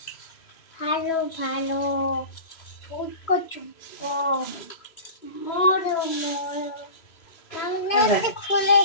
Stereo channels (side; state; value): right; late; 3.0 ms